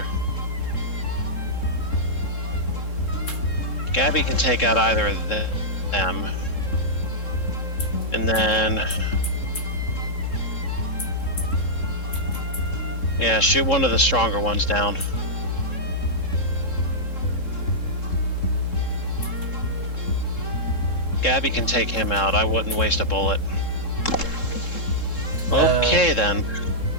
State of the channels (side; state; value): right; late; 3.7 ms